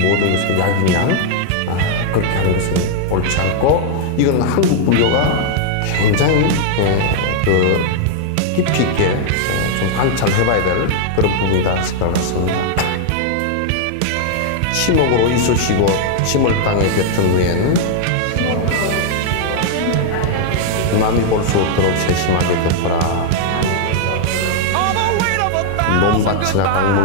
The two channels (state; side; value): different; both; correlation 0.00